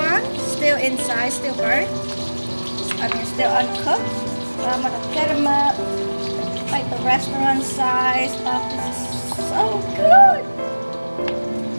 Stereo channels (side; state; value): both; inverted; correlation -1.00